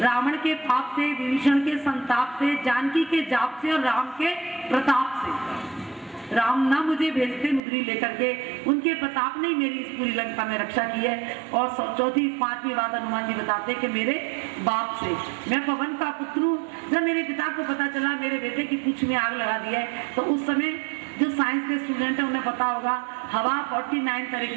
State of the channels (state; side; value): drops out; left; at 7.6 s